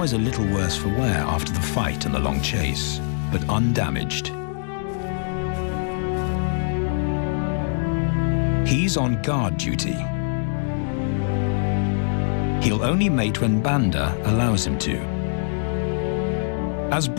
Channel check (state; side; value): silent; right; digital silence